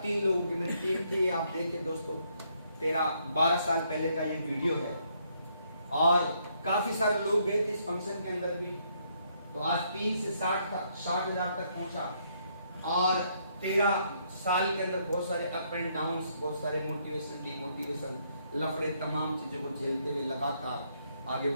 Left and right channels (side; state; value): both; inverted; correlation -0.72